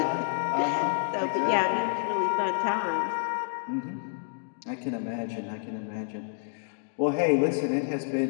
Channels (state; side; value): silent; right; digital silence